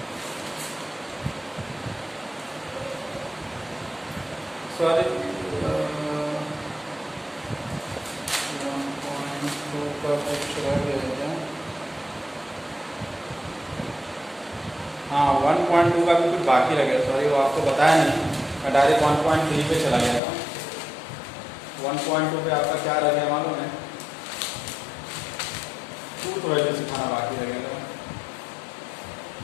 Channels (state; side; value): drops out; right; at 20.2 s